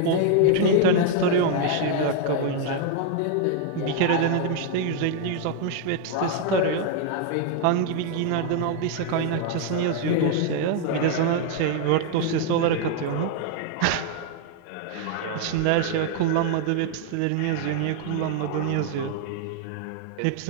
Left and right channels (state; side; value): different; both; correlation 0.00